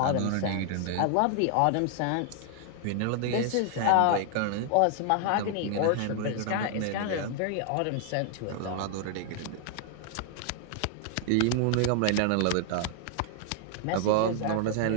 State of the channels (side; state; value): both; different; correlation 0.00